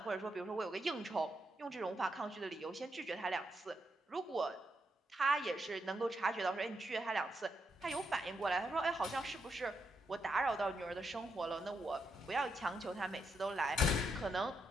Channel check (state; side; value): normal; both; correlation 0.81